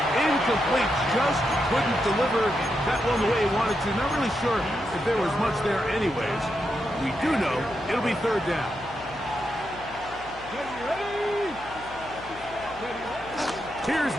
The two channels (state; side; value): noise; left; hum, 19 dB below the sound